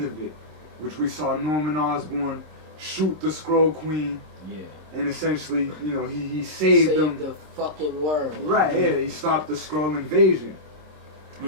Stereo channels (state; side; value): late; left; 26 ms